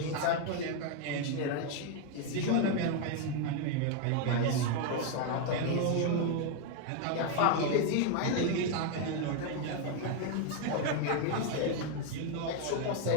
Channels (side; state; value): both; different; correlation 0.01